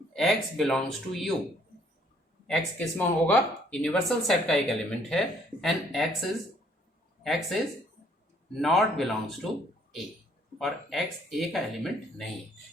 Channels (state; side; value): normal; both; correlation 0.64